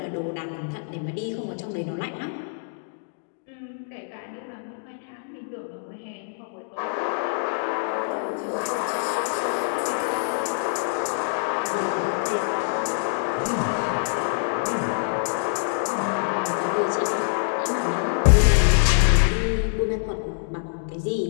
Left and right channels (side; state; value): right; silent; digital silence